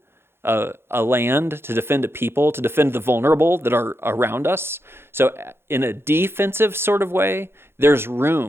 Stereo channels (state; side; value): late; left; 0.11 ms